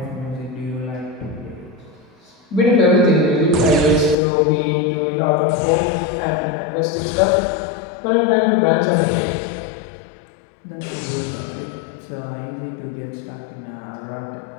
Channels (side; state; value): right; drops out; at 4.2 s